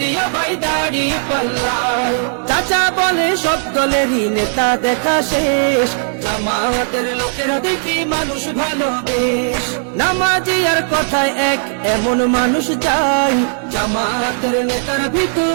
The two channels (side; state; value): left; silent; digital silence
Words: ভাই দাড়ি পাল্লায়। চাচা বলে সব দলেরই নেতা দেখা শেষ, জামাতের লোকেরা দেখি মানুষ ভালো বেশ। নামাজি আর কথায় এক এমন মানুষ চাই, জামাতের নেতার